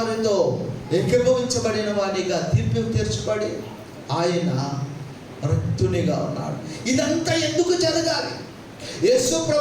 ఏకీభవించబడిన వాడిగా తీర్పు తీర్చబడి ఆయన రిక్తునిగా ఉన్నాడు. ఇదంతా ఎందుకు జరగాలి? యేసు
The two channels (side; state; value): both; identical; correlation 1.00